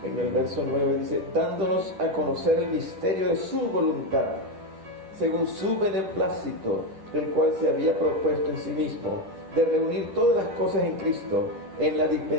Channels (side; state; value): left; late; 10 ms